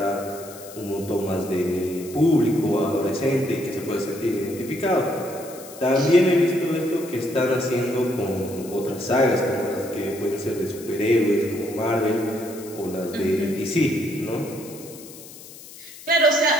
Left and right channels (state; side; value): noise; left; hiss, 17 dB below the sound